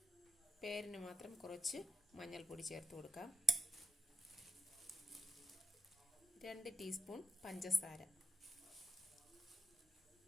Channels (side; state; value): both; normal; correlation 0.84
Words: പേരിന് മാത്രം കുറച്ച് മഞ്ഞൾപ്പൊടി ചേർത്ത് കൊടുക്കാം. 2 ടീസ്പൂൺ പഞ്ചസാര,